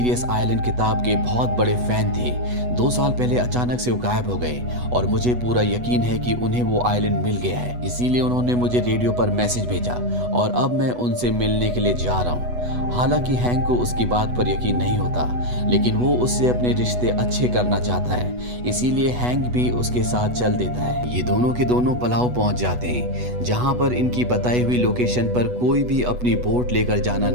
आइलैंड किताब के बहुत बड़े फैन थे। 2 साल पहले अचानक से वो गायब हो गए, और मुझे पूरा यकीन है कि उन्हें वो आइलैंड मिल गया है, इसीलिए उन्होंने मुझे रेडियो पर मैसेज भेजा, और अब मैं उनसे मिलने के लिए जा रहा हूँ। हालांकि हैंक को उसकी बात पर यकीन नहीं होता, लेकिन वो उससे अपने रिश्ते अच्छे करना चाहता है, इसीलिए हैंक भी उसके साथ चल देता है। ये दोनों के दोनों पलाव पहुंच जाते हैं, जहां पर इनकी बताई हुई लोकेशन पर कोई भी अपनी बोट लेकर जाना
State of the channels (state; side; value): late; left; 8.1 ms